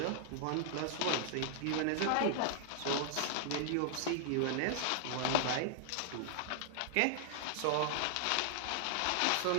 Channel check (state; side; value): different; both; correlation 0.00